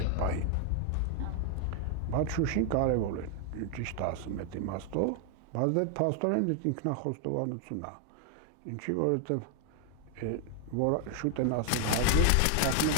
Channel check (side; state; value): both; different; correlation 0.00